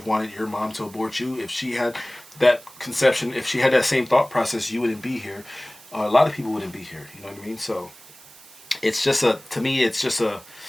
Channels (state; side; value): noise; right; hiss, 22 dB below the sound